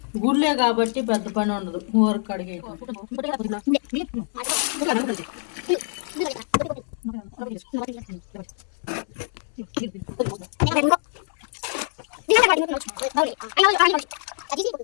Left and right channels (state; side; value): silent; right; 62 dB below the other